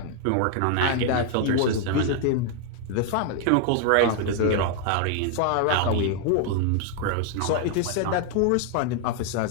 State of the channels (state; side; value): different; both; correlation 0.00